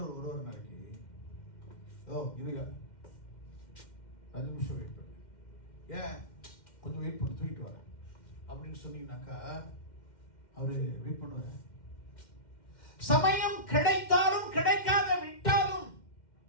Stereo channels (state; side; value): late; right; 2.1 ms